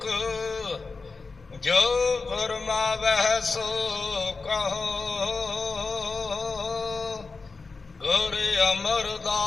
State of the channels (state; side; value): quieter; right; 4.2 dB